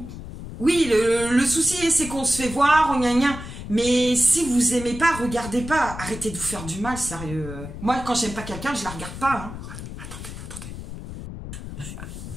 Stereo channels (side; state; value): left; noise; rumble, 10 dB below the sound